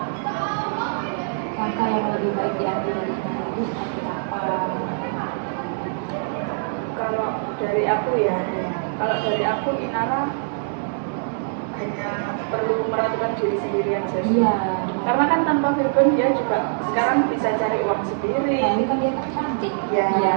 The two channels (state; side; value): silent; left; digital silence